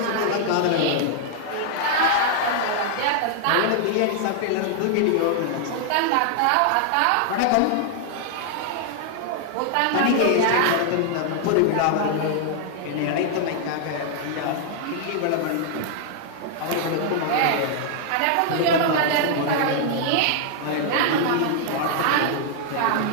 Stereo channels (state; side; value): different; both; correlation -0.01